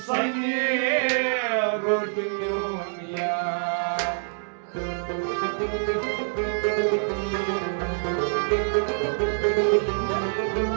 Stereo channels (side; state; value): left; silent; digital silence